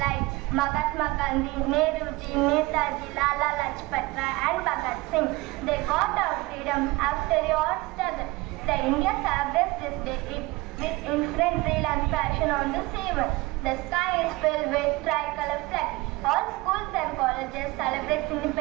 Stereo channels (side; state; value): left; quieter; 21.9 dB